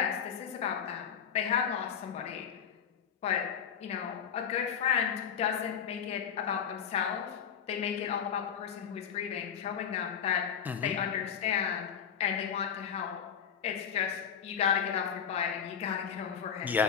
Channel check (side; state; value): right; quieter; 7.9 dB